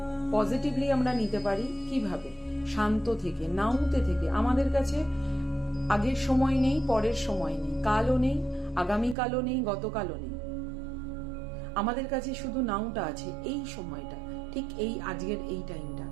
পজিটিভলি আমরা নিতে পারি কিভাবে? শান্ত থেকে, নাউতে থেকে। আমাদের কাছে আগের সময় নেই, পরের সময় নেই, কালও নেই, আগামীকালও নেই, গতকালও নেই। আমাদের কাছে শুধু নাউটা আছে, এই সময়টা, ঠিক এই আজকের এই টাইমটা।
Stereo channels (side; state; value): left; drops out; at 9.2 s